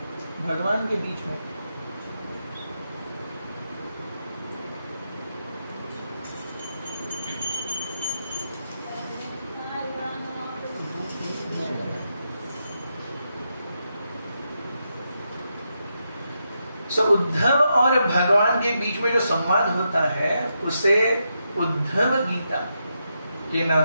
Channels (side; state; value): both; inverted; correlation -0.84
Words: भगवान के बीच में उद्धव और भगवान के बीच में जो संवाद होता है उसे उद्धव गीता के